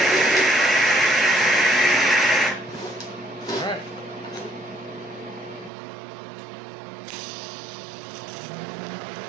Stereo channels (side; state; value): left; drops out; at 5.7 s